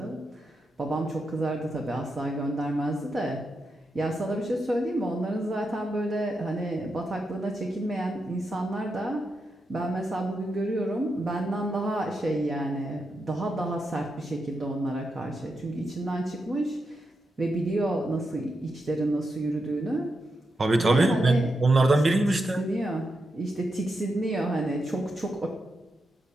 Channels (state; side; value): normal; both; correlation 0.86